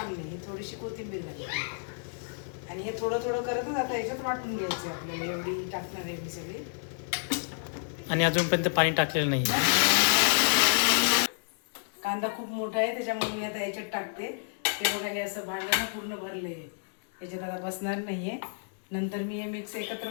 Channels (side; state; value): right; silent; digital silence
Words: नाही. ही थोडीशी कोथिंबीर घालते आणि हे थोडं थोडं करतच आता याच्यात वाटून घ्यायचं आपल्याला. एवढी टाकणार आहे मी सगळी. आणि अजूनपर्यंत पाणी टाकलेलं नाही. कांदा खूप मोठा आहे त्याच्यामुळे मी आता याच्यात टाकते. हे बघा हे असं भांडं ना पूर्ण भरलं आहे. याच्यात आता बसणार नाही आहे. नंतर मी हे मिक्स एकत्र